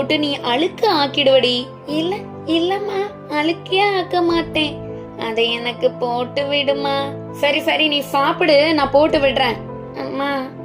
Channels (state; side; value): identical; both; correlation 1.00